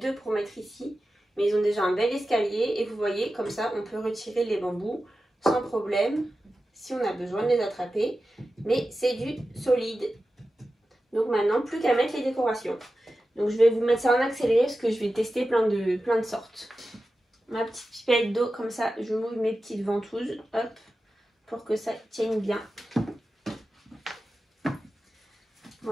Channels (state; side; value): normal; both; correlation 0.93